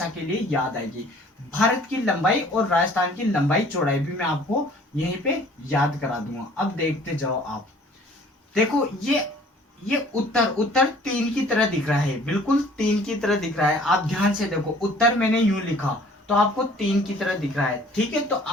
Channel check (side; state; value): both; normal; correlation 0.53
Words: के लिए याद आएगी। भारत की लंबाई और राजस्थान की लंबाई चौड़ाई भी मैं आपको यहीं पे याद करा दूंगा। अब देखते जाओ आप, देखो ये उत्तर उत्तर 3 की तरह दिख रहा है, बिल्कुल 3 की तरह दिख रहा है। आप ध्यान से देखो, उत्तर मैंने यूं लिखा तो आपको 3 की तरह दिख रहा है, ठीक है। तो